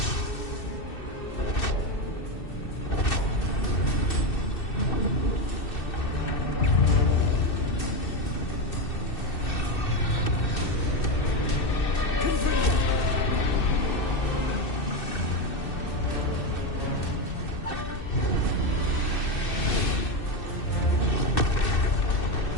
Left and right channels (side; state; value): right; late; 2.6 ms